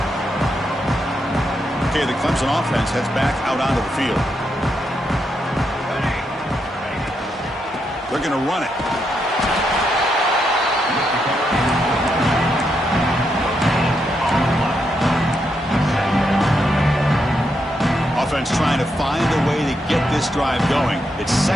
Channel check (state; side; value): normal; both; correlation 0.81